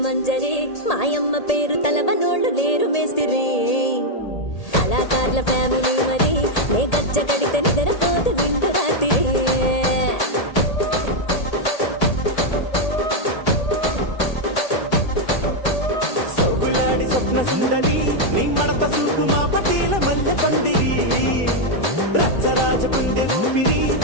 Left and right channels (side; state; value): right; late; 1.8 ms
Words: మాయమ్మ పేరు తలవనోళ్ళు లేరు మేస్తిరి కళాకారుల ఫ్యామిలీ మరి నే గజ్జ కడితే నిద్ర